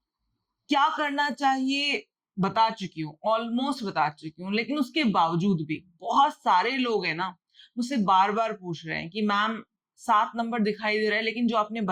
क्या करना चाहिए, बता चुकी हूँ, ऑलमोस्ट बता चुकी हूँ। लेकिन उसके बावजूद भी बहुत सारे लोग हैं ना, मुझसे बार बार पूछ रहे हैं कि मैम 7 नंबर दिखाई दे रहा है, लेकिन जो आपने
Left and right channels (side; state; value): both; identical; correlation 1.00